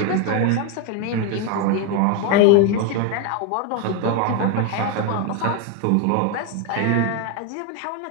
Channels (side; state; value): both; different; correlation 0.02